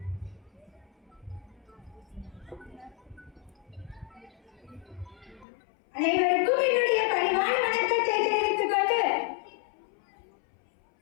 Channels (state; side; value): drops out; right; at 5.5 s